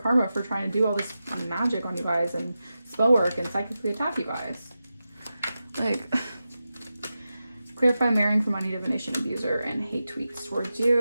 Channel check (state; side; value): inverted; both; correlation -0.92